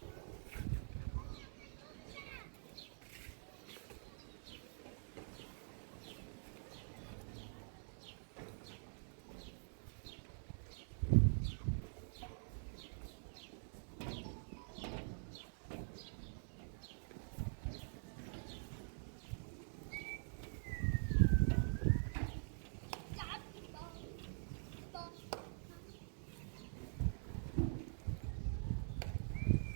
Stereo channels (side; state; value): left; silent; digital silence